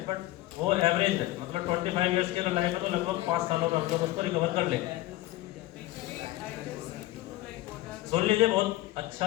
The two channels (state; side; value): quieter; right; 17.0 dB